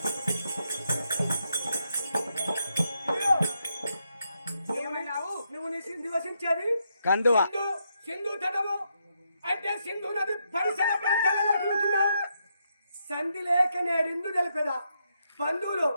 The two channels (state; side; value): inverted; both; correlation -0.80